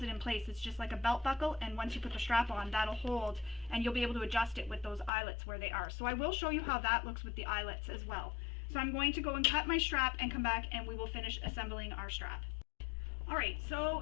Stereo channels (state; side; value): drops out; right; at 5.1 s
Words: it in place. It's just like a belt buckle, and once you put the strap on, that'll hold, and you'll be able to adjust it with those eyelets where they are. So I will show you how that looks with the eyelets as well. So I'm going to go and cut my strap and come back and we will finish assembling our strap. Alright,